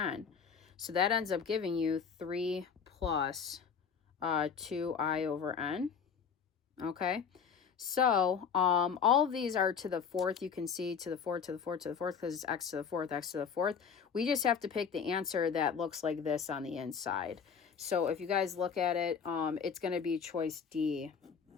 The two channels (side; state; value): right; quieter; 6.7 dB